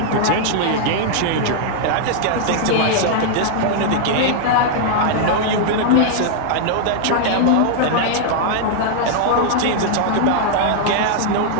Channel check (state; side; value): different; both; correlation -0.01